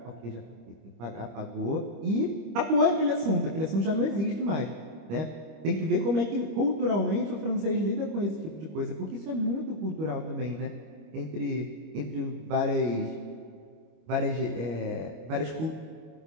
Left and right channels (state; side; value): late; left; 25 ms